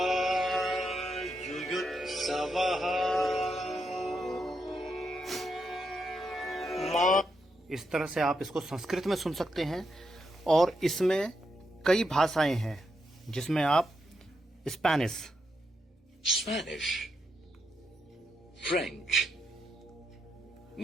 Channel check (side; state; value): both; normal; correlation 0.82